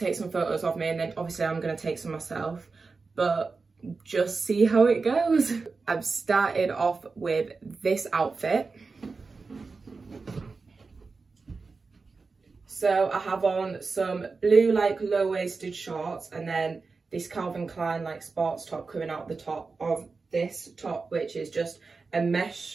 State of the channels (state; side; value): quieter; left; 4.3 dB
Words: some photos of me, and then obviously I'm going to take some myself. But just see how it goes. I've started off with this outfit. So I have on some blue like low-waisted shorts, and then this Calvin Klein like sports top coming out the top of this top, which is just a